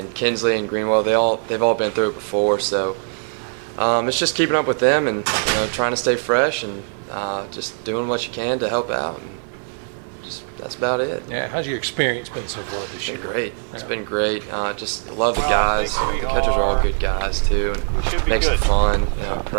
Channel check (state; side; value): silent; left; 62 dB below the other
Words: Kinsley and Greenwell. They've all been through it before, so it's just keeping up with them and trying to stay fresh and just doing what you can to help out. And that's about it. Yeah, how's your experience been so far this year? It's been great. It's been great. Just love the guys. The catchers are all good guys too, and makes it fun.